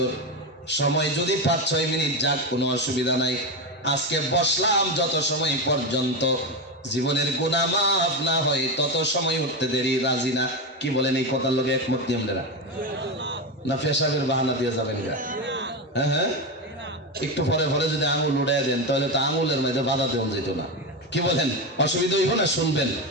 সময় যদি 5-6 মিনিট যাক কোনো অসুবিধা নাই, আজকে বসলাম যত সময় পর্যন্ত জীবনের গুনাহ মাফ না হয় তত সময় উঠতে দেরি রাজি না। কি বলেন এই কথার লগে একমত কি আপনারা? না পেশাবের বাহানা দিয়ে যাবেন গা? হ্যাঁ হ্যাঁ, একটু পরে পরে যদি আঙুল উড়াই দেন তাহলে তো আঙুলের মধ্যে বাধা দেওয়া যেত না। কি বলেন, অসুবিধা হইব না? শুনবেন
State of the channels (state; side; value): normal; both; correlation 0.15